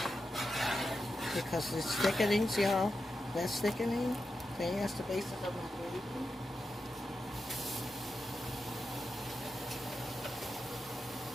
because it's thickening, see how that's thickening? See, that's the basis of my gravy.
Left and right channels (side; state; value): both; normal; correlation 0.89